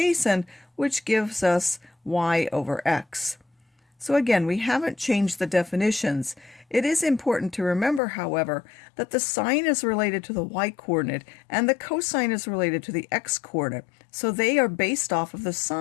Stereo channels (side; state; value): right; drops out; at 8.0 s